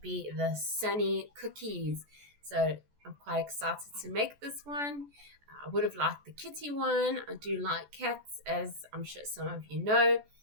be the Sunny Cookies. So I'm quite excited to make this one. I would have liked the kitty one. I do like cats, as I'm sure some of you know.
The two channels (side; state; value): left; late; 14 ms